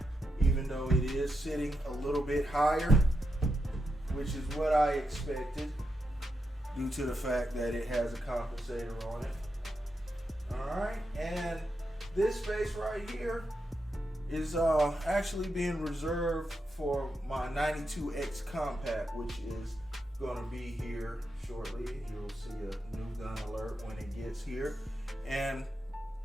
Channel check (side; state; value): both; normal; correlation 0.85